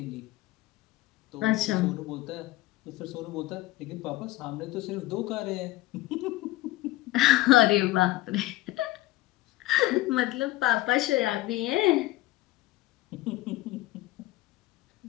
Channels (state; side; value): quieter; right; 17.4 dB